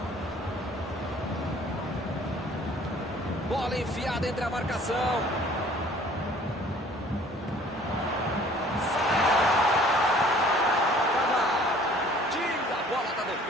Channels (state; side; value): normal; both; correlation 0.53